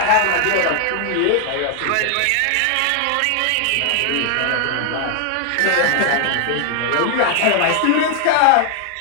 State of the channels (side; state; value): both; different; correlation 0.00